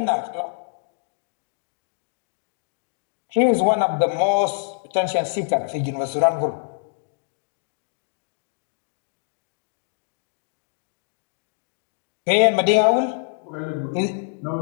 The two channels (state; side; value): silent; right; digital silence